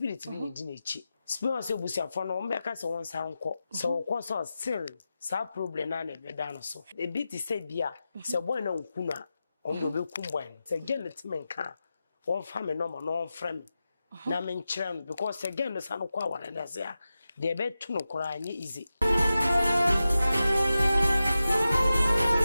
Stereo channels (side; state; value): both; inverted; correlation -0.93